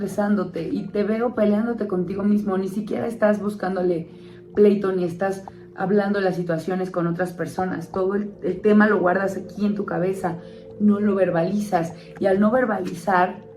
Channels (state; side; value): identical; both; correlation 1.00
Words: y te veo peleándote contigo mismo. Ni siquiera estás buscándole pleito ni estás hablando de las situaciones con otras personas. Todo el tema lo guardas aquí en tu cabeza, no lo verbalizas y al no verbalizar